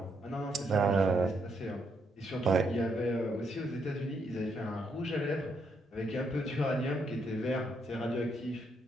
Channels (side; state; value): both; normal; correlation 0.76